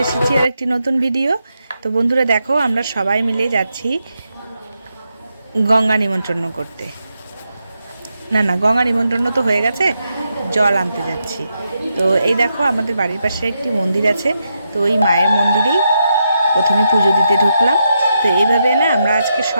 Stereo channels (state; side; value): inverted; both; correlation -0.83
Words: এসেছি আর একটি নতুন ভিডিও। তো বন্ধুরা দেখো, আমরা সবাই মিলে যাচ্ছি গঙ্গা নিমন্ত্রণ করতে। না, গঙ্গা নিমন্ত্রণ তো হয়ে গেছে, জল আনতে যাচ্ছি। তো এই দেখো, আমাদের বাড়ির পাশে একটি মন্দির আছে, তো ওই মায়ের মন্দিরেই প্রথমে পুজো দিতে ঢুকলাম। তো এইভাবে না আমরা আজকে